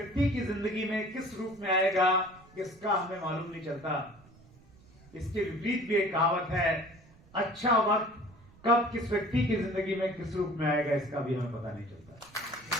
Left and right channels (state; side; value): noise; right; rumble, 25 dB below the sound